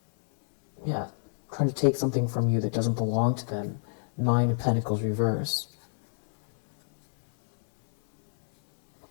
Yeah, trying to take something from you that doesn't belong to them. Nine of Pentacles reverse.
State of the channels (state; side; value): silent; right; 60 dB below the other